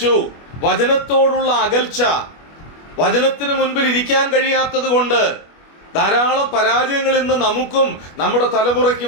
വചനത്തോടുള്ള അകൽച്ച, വചനത്തിന് മുൻപിൽ ഇരിക്കാൻ കഴിയാത്തത് കൊണ്ട് ധാരാളം പരാജയങ്ങൾ ഇന്ന് നമുക്കും നമ്മുടെ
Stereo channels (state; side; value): late; right; 25 ms